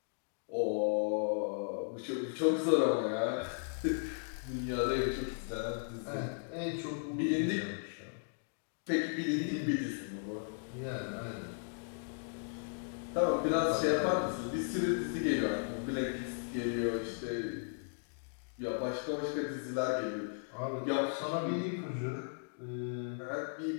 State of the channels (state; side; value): silent; right; digital silence